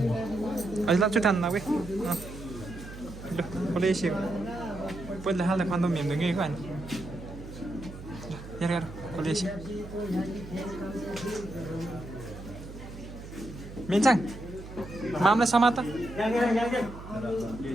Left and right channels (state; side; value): noise; right; hum, 13 dB below the sound